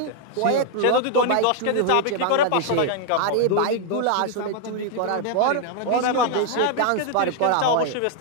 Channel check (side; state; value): both; different; correlation 0.00